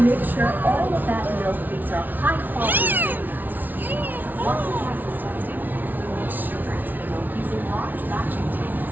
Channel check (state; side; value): late; left; 0.084 ms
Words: make sure all of that milk beans are high quality. Once the process testing, we mix sugar into the milk using large batching